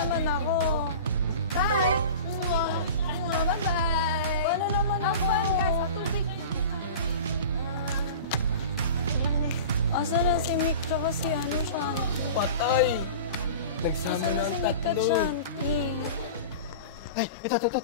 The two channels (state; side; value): inverted; both; correlation -0.35